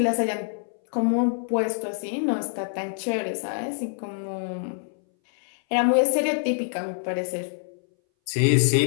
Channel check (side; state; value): right; silent; 60 dB below the other